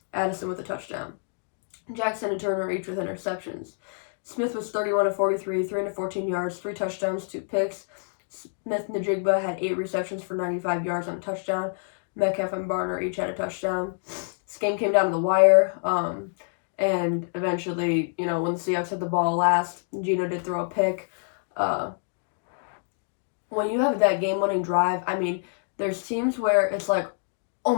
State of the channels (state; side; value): silent; right; digital silence